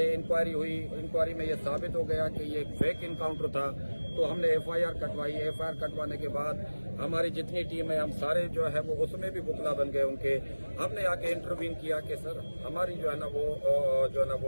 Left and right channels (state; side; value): inverted; both; correlation -1.00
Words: इंक्वायरी हुई, इंक्वायरी में ये साबित हो गया कि ये फेक इनकाउंटर था, तो हमने FIR कटवाई। FIR कटवाने के बाद हमारी जितनी टीम है हम सारे जो है वो उसमें भी वकला बन गए उनके। हमने आके इंटरव्यू किया कि सर हमारी जो है ना